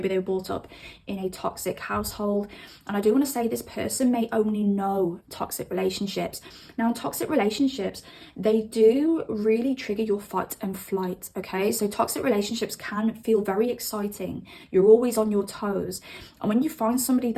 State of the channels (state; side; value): identical; both; correlation 1.00